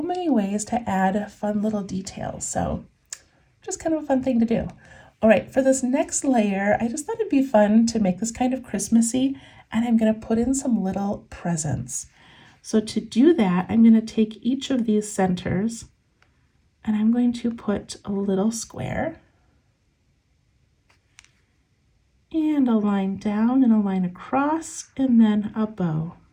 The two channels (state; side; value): identical; both; correlation 1.00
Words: many ways to add fun little details. So just kind of a fun thing to do. All right, for this next layer, I just thought it'd be fun to make this kind of Christmassy, and I'm going to put in some little presents. So to do that, I'm going to take each of these centers and I'm going to put a little square and a line down and a line across and then a bow.